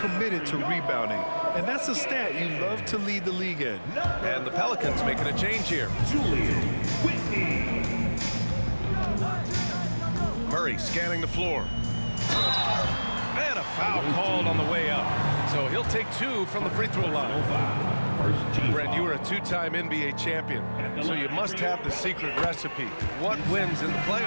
to rebounding. And that's a stat you love to lead the league in. And the Pelicans making a change here. Julian Whitney. Murray scanning the floor. And a foul called on the way up. So he'll take 2 from the free throw line. Brent, you were a 2-time NBA champion, so you must have the secret recipe. What wins in the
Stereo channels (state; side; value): inverted; both; correlation -1.00